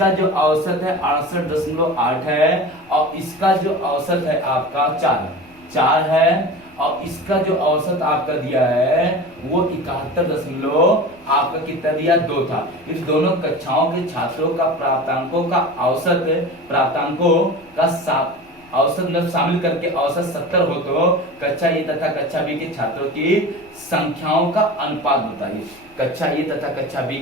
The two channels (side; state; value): left; noise; rumble, 28 dB below the sound